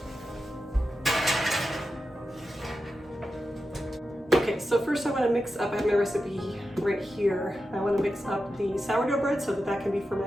Okay, so first I want to mix up, I have my recipe right here. I want to mix up the sourdough bread so that that can be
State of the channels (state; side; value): normal; both; correlation 0.91